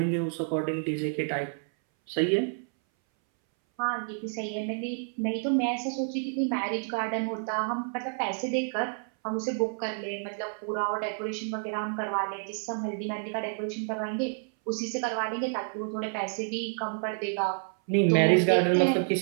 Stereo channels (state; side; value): silent; left; 58 dB below the other